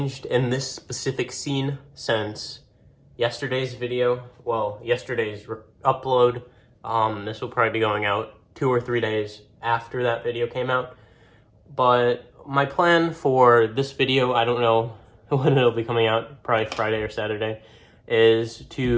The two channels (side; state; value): both; identical; correlation 1.00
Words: in this specific scene since yesterday's video. Well, yesterday's upload. This will probably be going out 2 or 3 days after that video came out. But my plan for this video, I don't know when it'll be coming out, probably Friday or Saturday, is